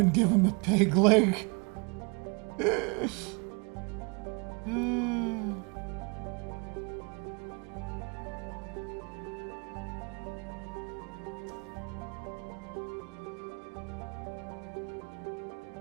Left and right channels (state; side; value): quieter; left; 31.3 dB